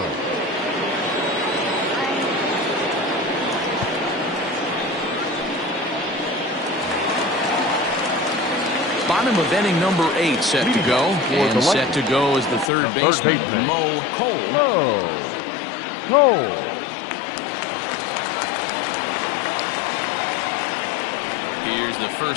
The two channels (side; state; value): right; drops out; at 12.7 s